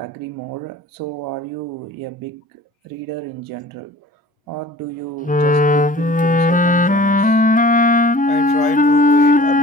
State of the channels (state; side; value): normal; both; correlation 0.45